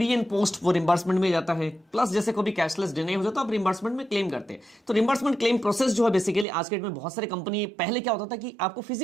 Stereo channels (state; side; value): drops out; left; at 6.5 s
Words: एंड पोस्ट वो रिम्बर्समेंट में जाता है, प्लस जैसे कोई भी कैशलेस डिनाई हो जाता है आप रिम्बर्समेंट में क्लेम करते हैं। तो रिम्बर्समेंट क्लेम प्रोसेस जो है बेसिकली आज के डेट में बहुत सारे कंपनी, पहले क्या होता था कि आपको